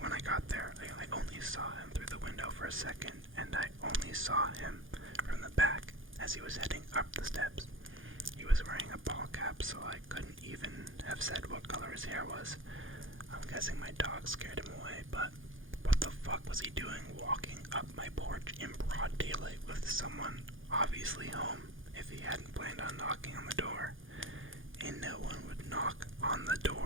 when I got there. I only saw him through the window for a second, and I only saw him from the back as he was heading up the steps. He was wearing a ball cap, so I couldn't even have said what color his hair was. I'm guessing my dog scared him away, but what the fuck was he doing walking up my porch in broad daylight with someone obviously home if he hadn't planned on knocking on the door? And no one would knock on the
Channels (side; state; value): left; late; 0.58 ms